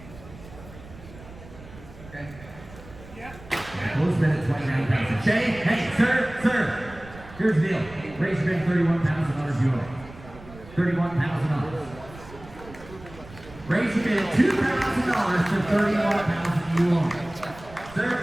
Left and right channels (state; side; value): noise; right; rumble, 18 dB below the sound